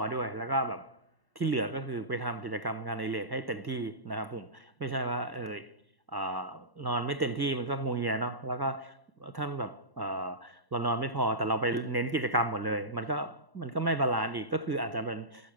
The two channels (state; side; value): late; left; 1.1 ms